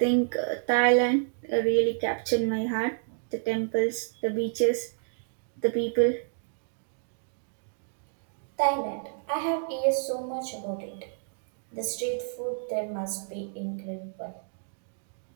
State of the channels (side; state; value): left; silent; digital silence